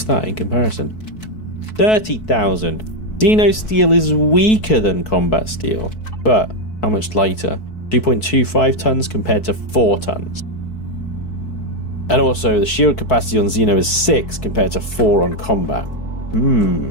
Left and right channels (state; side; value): late; right; 4.6 ms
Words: that in comparison? 30,000. Xeno steel is weaker than combat steel, but how much lighter? 2.25 tons compared to 4 tons. And also, the shield capacity on Xeno is 6 compared to 4 on combat.